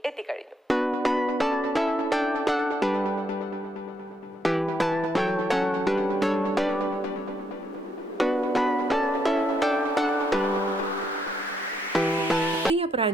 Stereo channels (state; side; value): normal; both; correlation 0.76